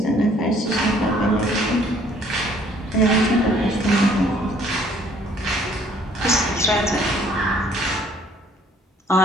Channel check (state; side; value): normal; both; correlation 0.60